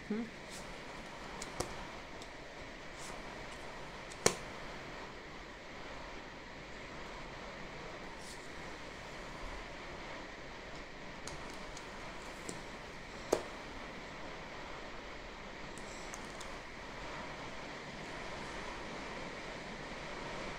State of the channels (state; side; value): identical; both; correlation 1.00